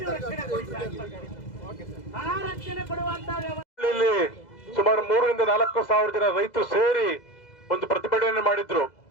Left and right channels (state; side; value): late; right; 2.0 ms